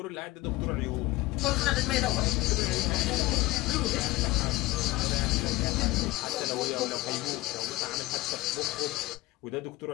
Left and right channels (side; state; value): right; quieter; 19.2 dB